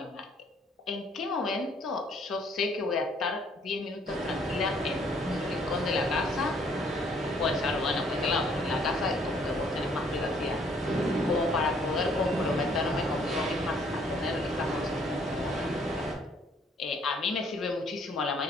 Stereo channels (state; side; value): normal; both; correlation 0.63